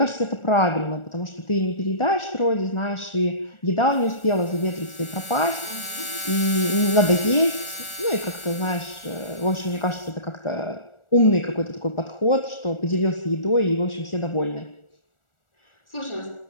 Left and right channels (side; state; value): right; late; 1.4 ms